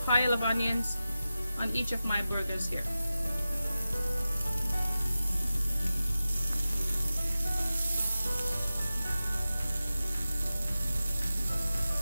pile of onions on each of my burgers here.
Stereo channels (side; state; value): both; inverted; correlation -0.94